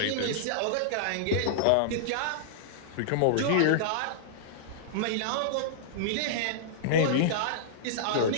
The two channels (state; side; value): different; both; correlation -0.02